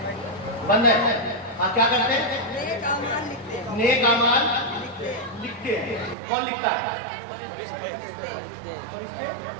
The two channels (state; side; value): drops out; left; at 6.2 s